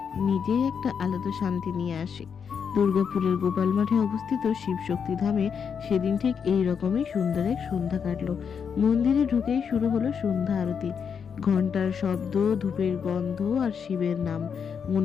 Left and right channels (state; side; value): quieter; right; 6.8 dB